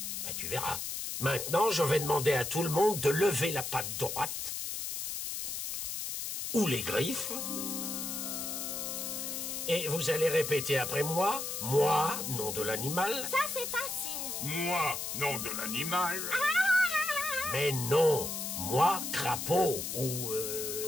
Ben, tu verras. Maintenant, je vais demander à tout le monde de lever la patte droite. Ou les griffes. Et vous allez répéter après moi. Moi, nom de l'animal. Ça, c'est facile. Moi, nom de l'animal. Mais non, moi, crapaud, ou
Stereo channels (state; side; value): noise; left; hiss, 4 dB below the sound